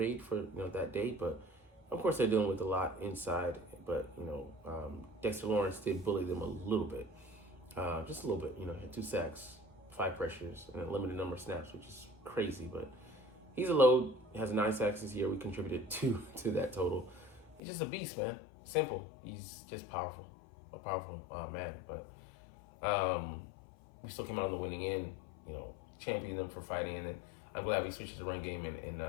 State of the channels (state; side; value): drops out; right; at 17.6 s